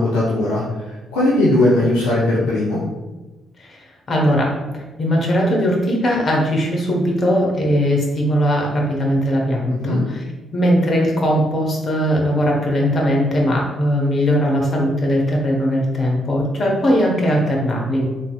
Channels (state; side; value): normal; both; correlation 0.74